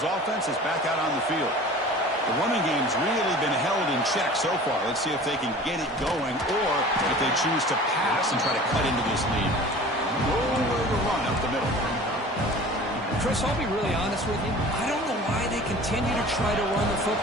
offense is back out on the field. The running game's really been held in check so far. Let's see if they can get it going or if they choose to pass and try to cut into this lead. Nowhere to run up the middle. Chris, I'll be really honest with you. I don't know why they continue to try to run the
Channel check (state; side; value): normal; both; correlation 0.42